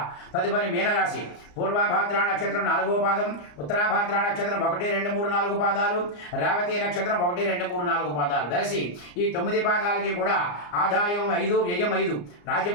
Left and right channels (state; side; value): late; right; 34 ms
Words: తదుపరి మీనరాశి. పూర్వభాద్ర నక్షత్రం 4వ పాదం, ఉత్తరాభాద్ర నక్షత్రం 1, 2, 3, 4 పాదాలు, రేవతి నక్షత్రం 1, 2, 3, 4 పాదాలు. వెరసి ఈ 9 పాదాలకి కూడా ఆదాయం 5, వ్యయం 5,